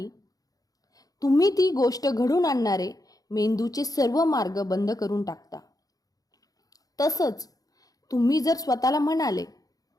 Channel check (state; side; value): late; right; 0.18 ms